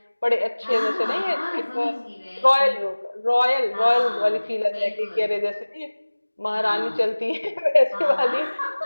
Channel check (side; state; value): both; inverted; correlation -1.00